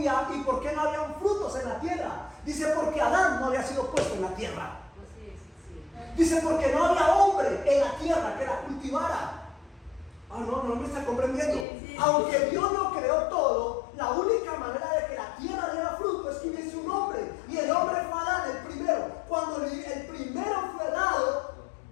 y por qué no había frutos en la tierra. Dice porque Adán no había sido puesto en la tierra. Dice porque no había hombre en la tierra que la cultivara. No me está comprendiendo. Aunque Dios lo creó todo, la única manera de que la tierra diera fruto es que hubiese un hombre. Y el hombre fue Adán, el primero. Cuando el primero fue dado,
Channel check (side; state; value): right; drops out; at 11.7 s